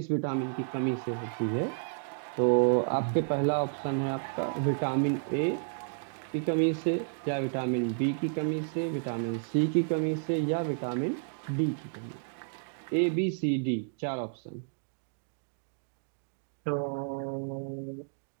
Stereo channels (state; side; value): silent; left; digital silence